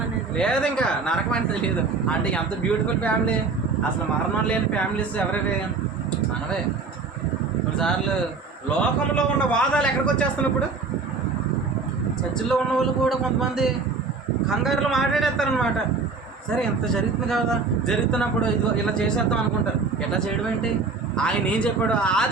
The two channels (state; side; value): quieter; left; 4.4 dB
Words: అనేది లేదు, ఇంకా నరకం అనేది లేదు. అంటే ఎంత బ్యూటిఫుల్ ఫ్యామిలీ. అసలు మరణం లేని ఫ్యామిలీస్ ఎవరివి? మనవే. కొన్నిసార్లు లోకంలో ఉన్న వాదాలు ఎక్కడికి వచ్చేస్తున్నాయి ఇప్పుడు. చర్చిల్లో ఉన్న వాళ్ళు కూడా కొంతమంది కంగారులో మాట్లాడేస్తారనమాట. సరే ఎంత జరుగుతుంది కదా, జరుగుతున్నప్పుడు ఇది ఇలా చేసేద్దాం అనుకుంటారు. ఎట్లా చేయడం ఏంటి? ఆయన ఏం చెప్పాడు?